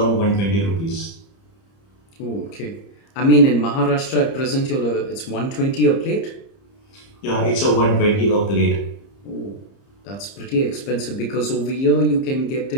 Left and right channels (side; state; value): right; late; 30 ms